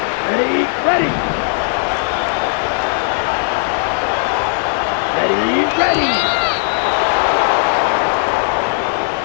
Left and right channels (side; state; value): right; silent; 64 dB below the other